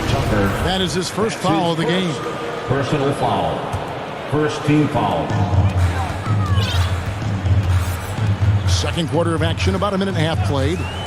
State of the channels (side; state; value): both; identical; correlation 1.00